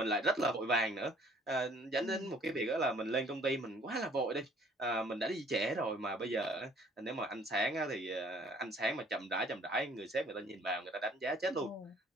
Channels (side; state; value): both; normal; correlation 0.57